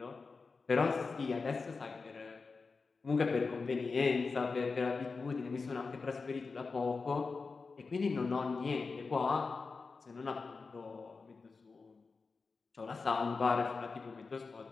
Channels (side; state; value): right; quieter; 4.4 dB